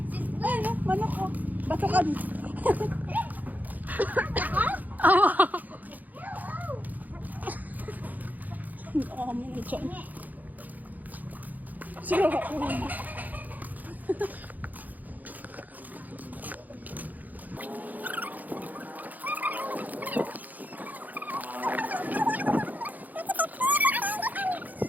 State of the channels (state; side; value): late; left; 0.082 ms